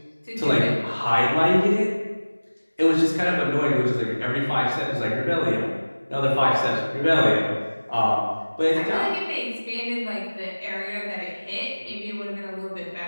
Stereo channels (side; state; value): both; inverted; correlation -1.00